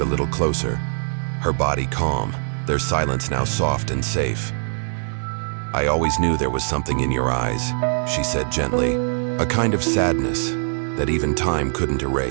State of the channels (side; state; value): left; silent; digital silence